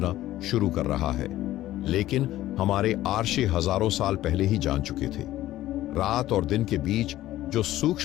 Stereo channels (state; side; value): quieter; right; 14.7 dB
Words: शुरू कर रहा है, लेकिन हमारे आर्षि हजारों साल पहले ही जान चुके थे। रात और दिन के बीच जो